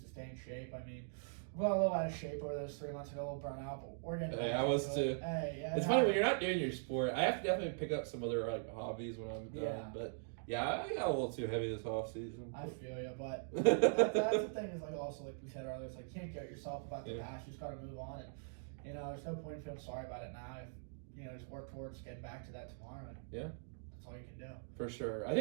to stay in shape. I mean, I got a little out of shape over those 3 months ago, a little burnt out, but we're getting Hey, I was too. Hey, yeah, It's funny when you're not doing your sport. I have to definitely pick up some other like hobbies when I'm done. Yeah. But yeah, I got a little too heavy this off season. I feel you, but that's the thing is like also like we said earlier, it's like you can't get yourself about the past. You just got to move on, and you know there's no point in feeling sorry about it now. If you know just work towards getting back to that tomorrow. And Yeah, that's all you can do. for sure. I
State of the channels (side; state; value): left; silent; digital silence